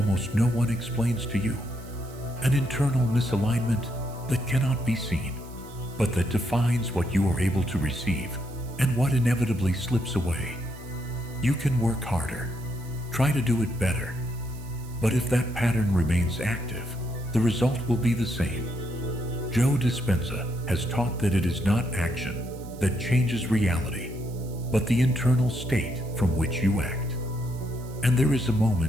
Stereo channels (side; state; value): right; noise; hiss, 22 dB below the sound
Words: no one explains to you, an internal misalignment that cannot be seen, but that defines what you are able to receive and what inevitably slips away. You can work harder, try to do it better, but if that pattern remains active, the result will be the same. Joe Dispenza has taught that it is not action that changes reality, but the internal state from which you act. And there is a